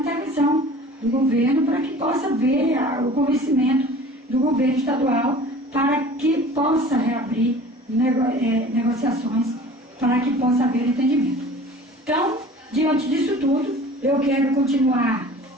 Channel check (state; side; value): normal; both; correlation 0.44